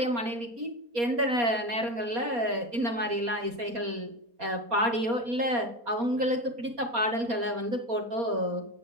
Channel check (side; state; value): left; late; 4.2 ms